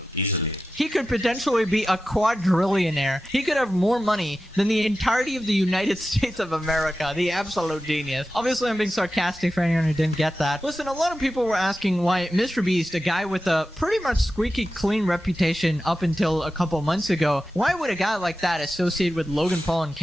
easily. He could potentially be a quadrillionaire. He could have more money than the entirety of the United States of America. The absolute genius. Obviously, I'm being sarcastic for anyone who didn't get that. Listen, a lot of people were asking why MrBeast, a guy with a pretty much squeaky clean reputation up until a couple months ago, why would a guy like that associate with Logan Paul and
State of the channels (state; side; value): normal; both; correlation 0.92